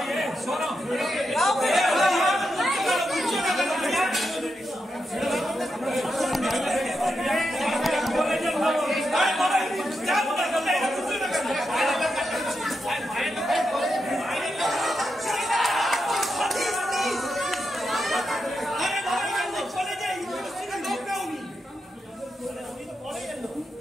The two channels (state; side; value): normal; both; correlation 0.86